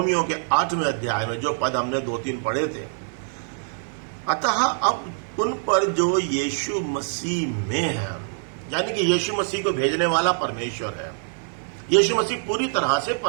के 8वें अध्याय में जो पद हमने 2-3 पढ़े थे, अतः अब उन पर जो यीशु मसीह में है, यानी कि यीशु मसीह को भेजने वाला परमेश्वर है। यीशु मसीह पूरी तरह से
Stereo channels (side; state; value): left; silent; 58 dB below the other